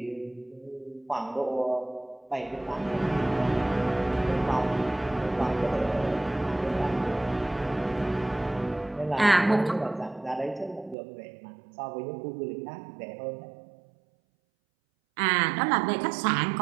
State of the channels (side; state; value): left; drops out; at 11.0 s